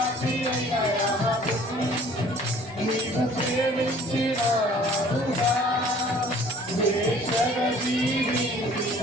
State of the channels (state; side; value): normal; both; correlation 0.53